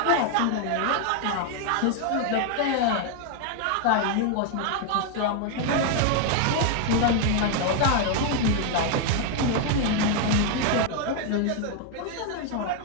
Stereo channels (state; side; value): different; both; correlation 0.00